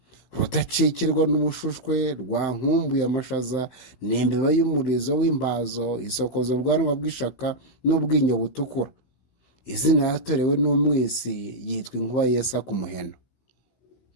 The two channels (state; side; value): late; right; 16 ms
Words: rudacikirwa n'umushushwe, rwa nkumbuye amashaza, n'imbeba y'umurizo w'imbazo, isokoza ubwanwa bw'ishaka n'ubwinyo butukura. Izina yatorewe n'umwisi yitwa inkuba yesa ku muheno.